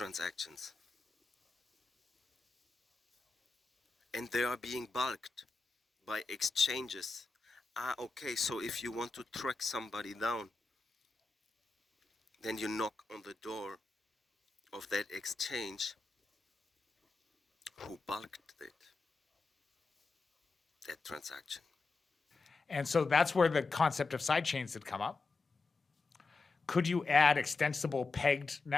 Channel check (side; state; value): right; quieter; 3.9 dB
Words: and they are being bulked by exchanges Okay, so if you want to track somebody down, then you knock on the door of that exchange who bulked it, that transaction. And so that's where the concept of sidechains had come up. Could you add extensible pegged